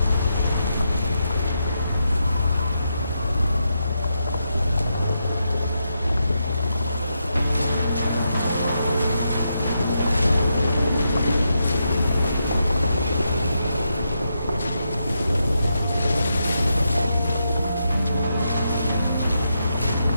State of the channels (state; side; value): inverted; both; correlation -0.84